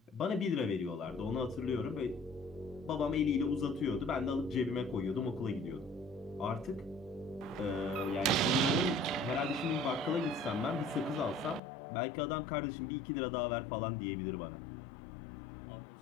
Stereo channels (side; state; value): right; drops out; at 11.6 s